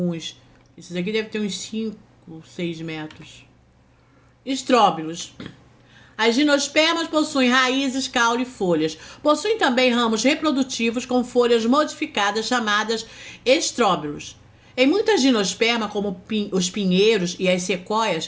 Esses aqui devem ter uns 5, 6 metros. Estróbilos. As gimnospermas possuem raízes, caule e folhas. Possuem também ramos reprodutivos com folhas modificadas chamadas estróbilos. Em muitas gimnospermas, como os pinheiros e as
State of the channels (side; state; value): both; identical; correlation 1.00